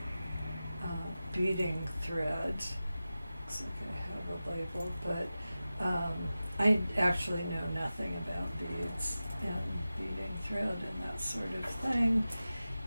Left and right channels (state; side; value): inverted; both; correlation -0.94